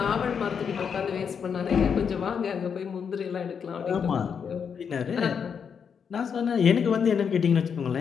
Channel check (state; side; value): quieter; right; 6.9 dB